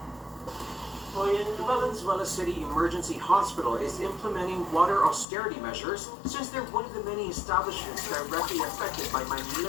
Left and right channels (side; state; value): right; drops out; at 5.2 s